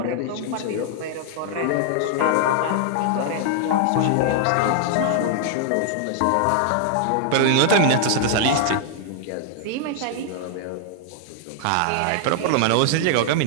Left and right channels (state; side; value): different; both; correlation 0.00